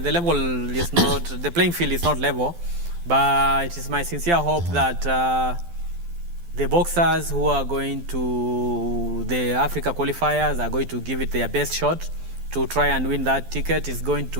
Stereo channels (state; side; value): late; left; 12 ms